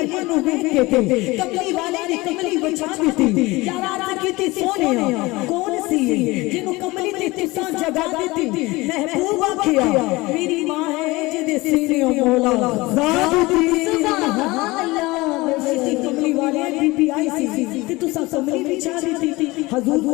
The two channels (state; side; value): quieter; right; 21.6 dB